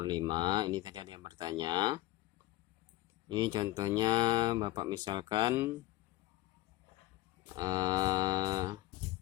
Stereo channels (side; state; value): right; quieter; 17.3 dB